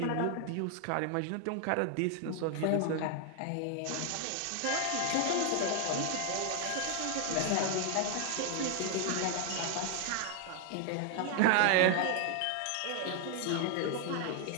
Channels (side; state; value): both; different; correlation 0.00